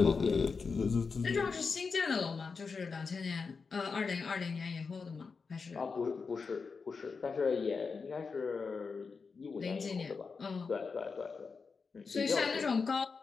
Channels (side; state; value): right; quieter; 5.0 dB